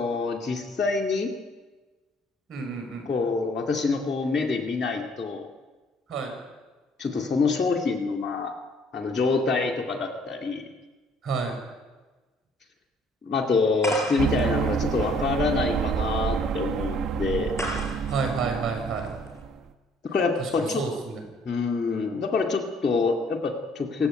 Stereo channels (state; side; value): normal; both; correlation 0.60